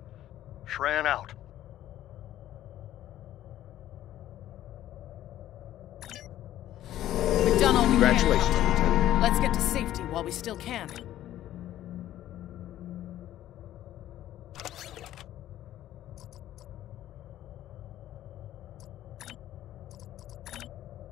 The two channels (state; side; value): quieter; right; 13.0 dB